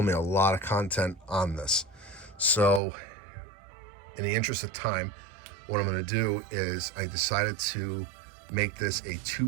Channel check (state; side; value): drops out; left; at 2.8 s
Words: a lot of content on this. So in the interest of time, what I'm going to do is I decided to make this a